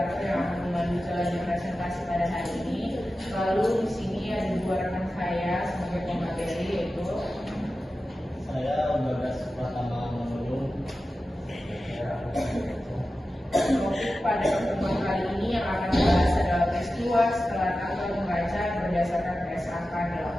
yang akan memandu jalannya presentasi pada hari ini. Lalu di sini ada dua rekan saya sebagai pemateri, yaitu saya Bagas Pratama Manulung. Topik pada pertemuan kali ini yang akan dibahas adalah peristiwa setelah tanggal membaca berdasarkan PSAK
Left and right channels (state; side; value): normal; both; correlation 0.93